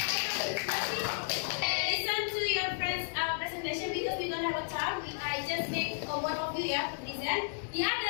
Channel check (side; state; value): right; silent; digital silence